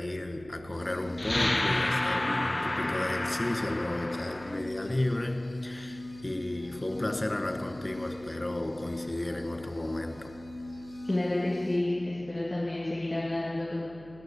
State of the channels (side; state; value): right; noise; hum, 20 dB below the sound